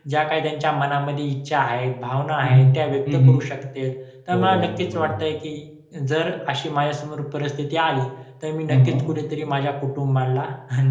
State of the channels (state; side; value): identical; both; correlation 1.00